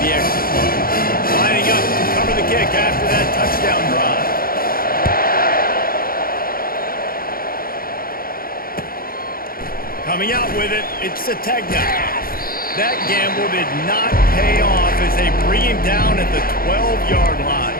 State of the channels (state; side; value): late; right; 0.42 ms